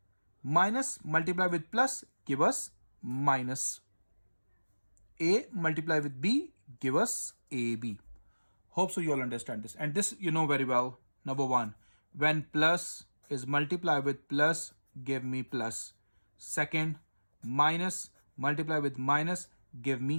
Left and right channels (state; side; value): inverted; both; correlation -1.00